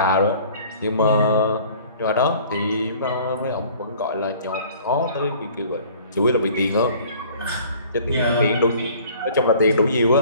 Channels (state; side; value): inverted; both; correlation -0.51